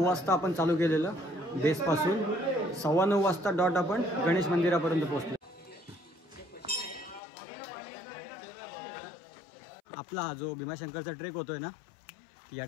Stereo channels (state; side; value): drops out; right; at 7.2 s